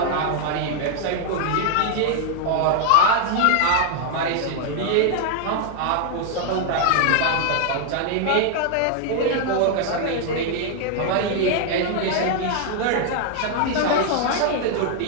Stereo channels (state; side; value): different; both; correlation 0.00